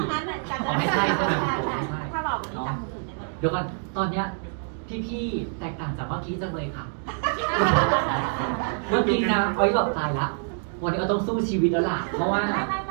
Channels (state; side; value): silent; left; 61 dB below the other